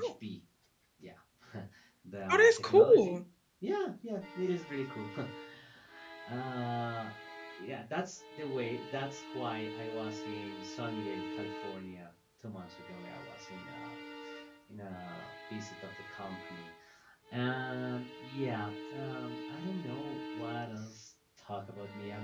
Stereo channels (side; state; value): both; identical; correlation 1.00